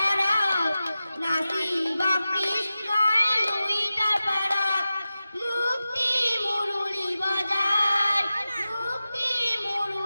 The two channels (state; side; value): inverted; both; correlation -0.94